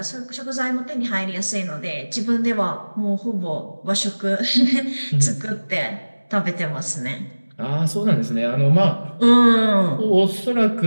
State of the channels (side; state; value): both; inverted; correlation -1.00